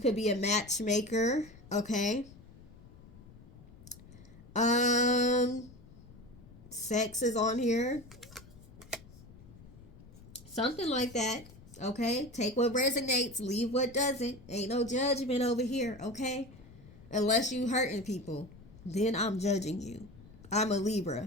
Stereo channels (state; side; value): noise; left; rumble, 20 dB below the sound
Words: be a matchmaker, okay? Sex is on here, something like that. Okay, take what resonates, leave what doesn't. Ain't no judgment over here, okay? Unless you hurting people, then I'm judging you. I'm a Libra.